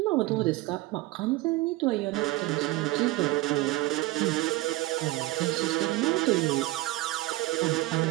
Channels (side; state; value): left; quieter; 18.6 dB